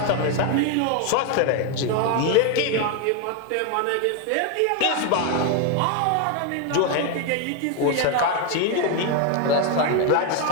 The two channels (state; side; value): different; both; correlation 0.01